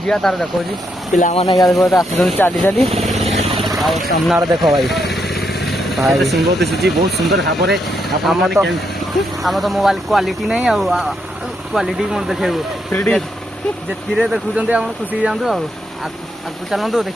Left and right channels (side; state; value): both; normal; correlation 0.78